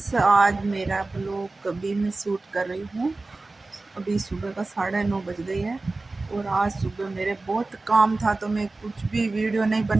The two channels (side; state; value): left; quieter; 3.3 dB